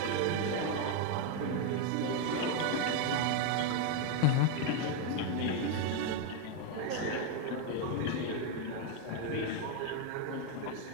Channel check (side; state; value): both; different; correlation 0.01